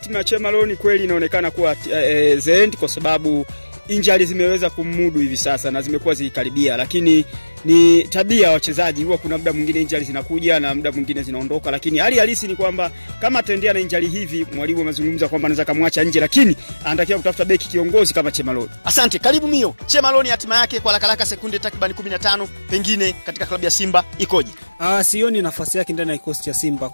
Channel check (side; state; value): both; inverted; correlation -1.00